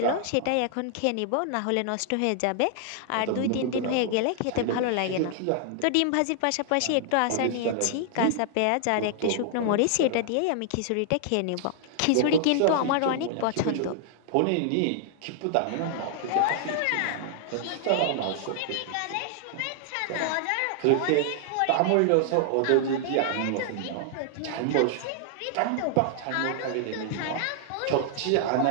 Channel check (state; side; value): different; both; correlation -0.01